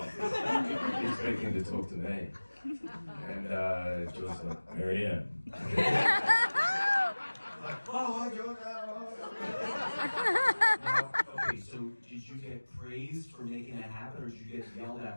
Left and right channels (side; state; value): both; inverted; correlation -1.00